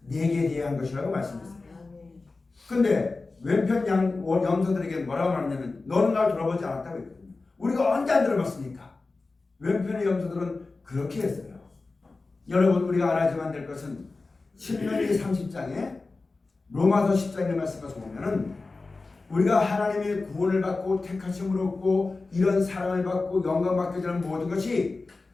내게 대한 것이라고 말씀했어요. 근데 왼편 염소들에게 뭐라고 말하냐면 너는 날 돌아보지 않았다고 했거든요. 우리가 언제 안 들어봤습니까? 왼편의 염소들은 그렇게 했어요. 여러분 우리가 알아야만 될 것은 신명기 30장에 로마서 10장의 말씀을 보면은 우리가 하나님의 구원을 받고 택하심을 얻고 이런 사랑을 받고 영광 받게 되는 모든 것이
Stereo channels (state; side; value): quieter; right; 3.7 dB